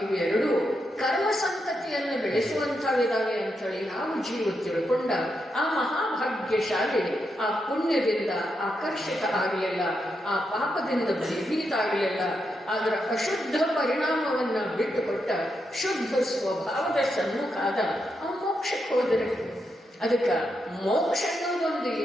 ಇವೆರಡು ಕರ್ಮ ಸಂತತಿಯನ್ನು ಬೆಳೆಸುವಂಥವಿದಾವೆ ಅಂಥೇಳಿ ನಾವು ಜೀವ ತಿಳ್ಕೊಂಡ ಆ ಮಹಾಭಾಗ್ಯಶಾಲಿ ಆ ಪುಣ್ಯದಿಂದ ಆಕರ್ಷಿತ ಆಗಲಿಲ್ಲ, ಆ ಪಾಪದಿಂದ ಭಯಭೀತ ಆಗಲಿಲ್ಲ. ಅದರ ಅಶುದ್ಧ ಪರಿಣಾಮವನ್ನ ಬಿಟ್ಟುಕೊಟ್ಟ ಶುದ್ಧ ಸ್ವಭಾವದ ಸನ್ಮುಖಾದ ಆ ಮೋಕ್ಷಕ್ಕೆ ಹೋದರೆ. ಅದಕ್ಕೆ ಮೋಕ್ಷ ಅನ್ನೋದೊಂದು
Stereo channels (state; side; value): normal; both; correlation 0.83